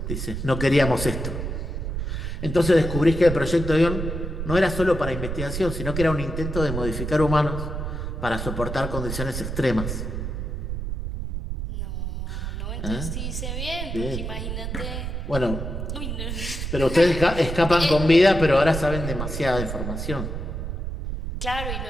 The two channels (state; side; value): noise; right; rumble, 4 dB below the sound